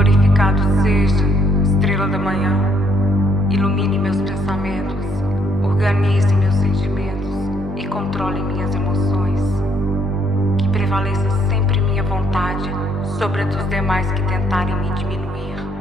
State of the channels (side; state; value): both; normal; correlation 0.69